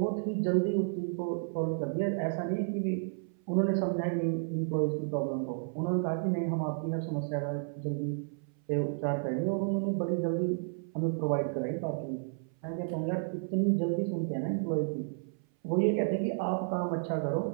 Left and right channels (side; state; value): left; silent; 56 dB below the other